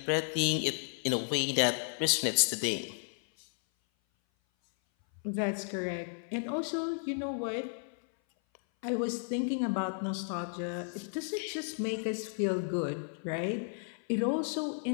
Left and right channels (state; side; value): silent; right; 56 dB below the other